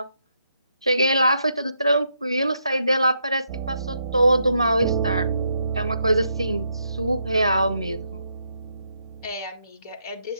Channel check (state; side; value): inverted; both; correlation -0.78